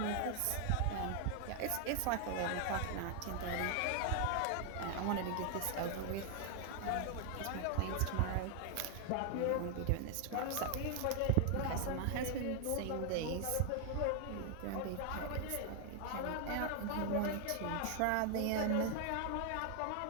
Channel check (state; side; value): different; both; correlation 0.00